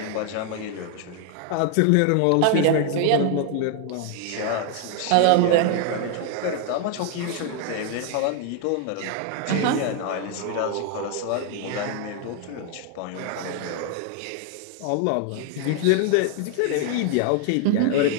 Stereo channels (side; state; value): both; different; correlation 0.00